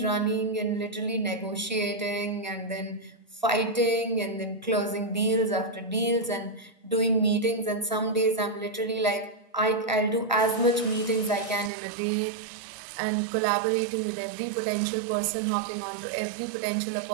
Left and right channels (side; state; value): left; drops out; at 11.7 s